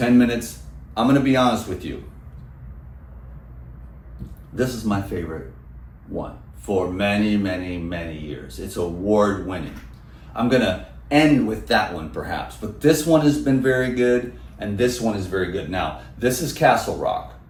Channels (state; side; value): identical; both; correlation 1.00